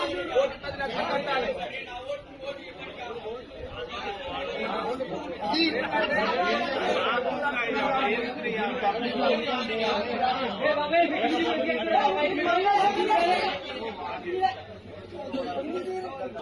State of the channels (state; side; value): identical; both; correlation 1.00